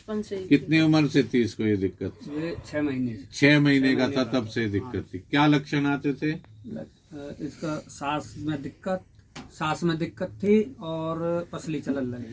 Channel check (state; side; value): identical; both; correlation 1.00